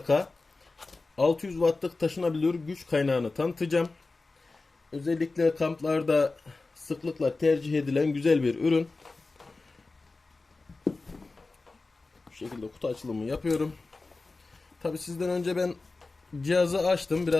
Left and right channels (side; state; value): right; quieter; 3.6 dB